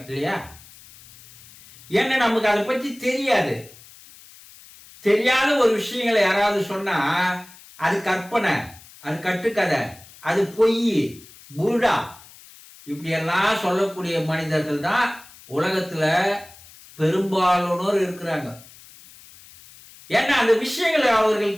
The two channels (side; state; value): left; noise; hiss, 22 dB below the sound